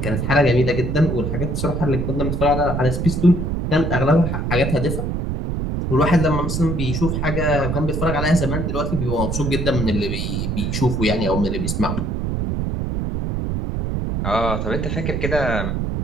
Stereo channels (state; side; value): noise; right; rumble, 1 dB below the sound